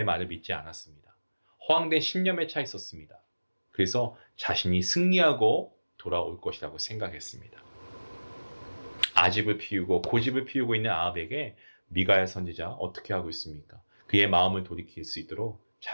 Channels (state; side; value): inverted; both; correlation -1.00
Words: 말을 믿지 않았습니다. 허황된 신념에 차 있었습니다. 그래서 자신이 승리하고 돌아올 것이라고 생각했습니다. 아집을 피우고 고집을 피우고 있는 아합에게 미가야 선지자 어떻게 하고 있습니까? 그의 마음을 돌이킬 수 있도록